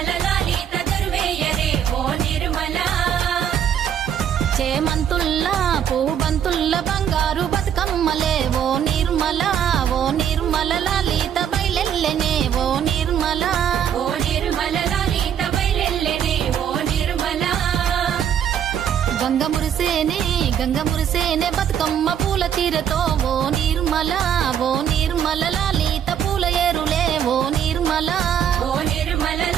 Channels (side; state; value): left; quieter; 9.0 dB